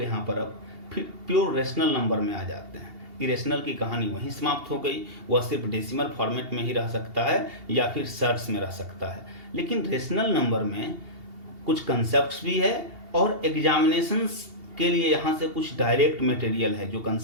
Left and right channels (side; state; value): left; late; 2.8 ms